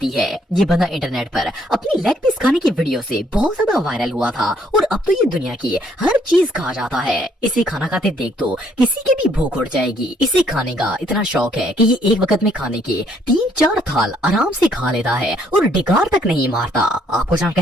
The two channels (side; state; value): both; normal; correlation 0.67